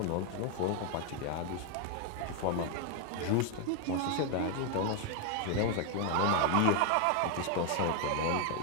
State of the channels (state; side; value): different; both; correlation 0.01